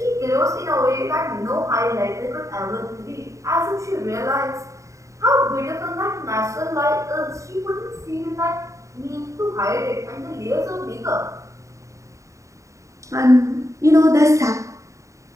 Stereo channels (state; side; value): late; left; 0.15 ms